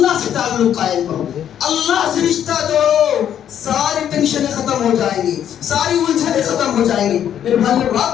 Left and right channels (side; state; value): right; quieter; 9.9 dB